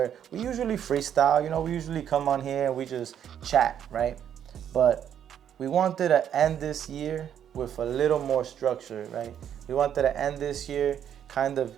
we usually freestyle. We usually come on here and we just chat, right? But we wanted to end this year with a little more structure, right? We wanted to end this year kind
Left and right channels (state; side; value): quieter; left; 9.4 dB